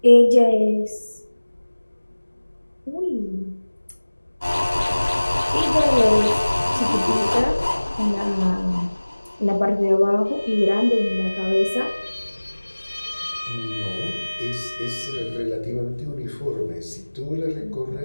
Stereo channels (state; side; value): inverted; both; correlation -1.00